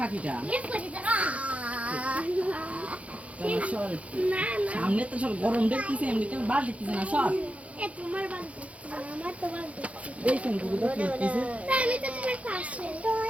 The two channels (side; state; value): left; late; 0.065 ms